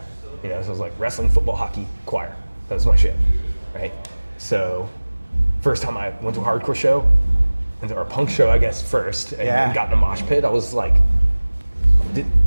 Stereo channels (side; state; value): both; inverted; correlation -1.00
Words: You know, so it was like wrestling, football, hockey, choir. That was my shit, right? So first time I went to a hardcore show, or a punk show, I guess, first, and got in a mosh pit, I was like,